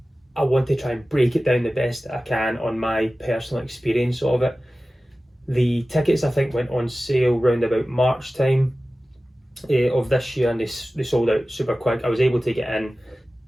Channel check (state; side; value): normal; both; correlation 0.96